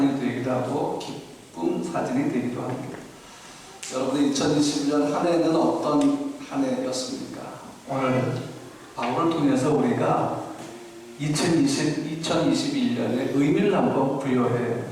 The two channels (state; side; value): identical; both; correlation 1.00